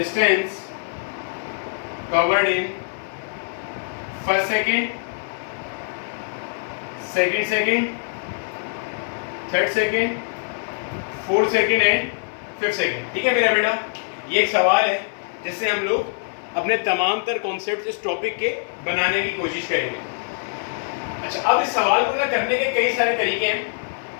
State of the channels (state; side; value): silent; right; 58 dB below the other